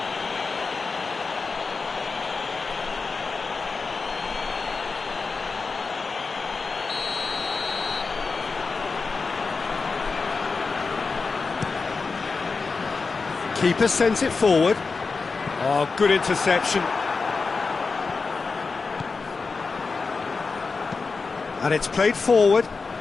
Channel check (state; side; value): quieter; right; 4.4 dB